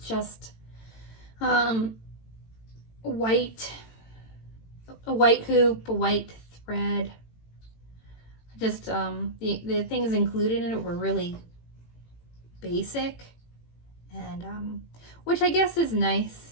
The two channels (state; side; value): late; right; 18 ms